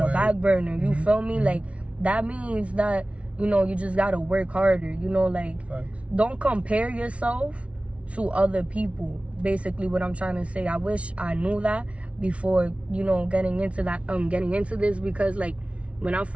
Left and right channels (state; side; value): late; left; 0.062 ms